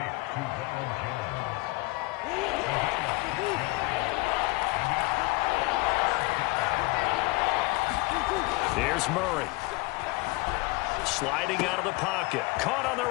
Here's Murray. Sliding out of the pocket. Caught on the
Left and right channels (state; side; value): quieter; right; 24.2 dB